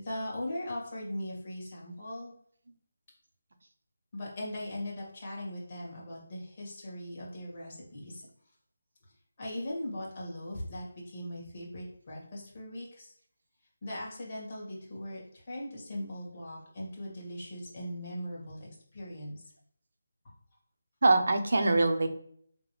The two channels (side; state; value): both; inverted; correlation -0.92